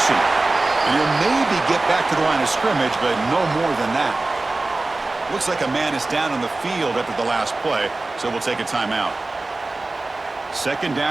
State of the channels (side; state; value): left; quieter; 3.1 dB